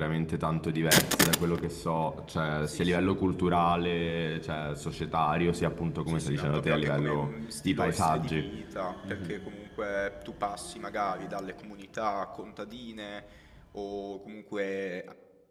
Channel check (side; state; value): both; identical; correlation 1.00